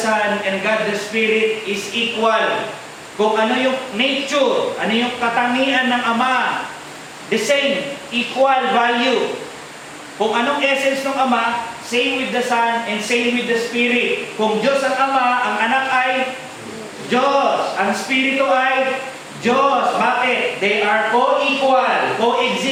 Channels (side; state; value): both; identical; correlation 1.00